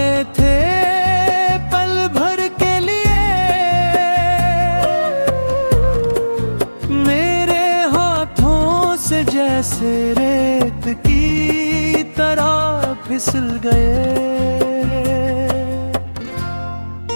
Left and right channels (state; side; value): inverted; both; correlation -1.00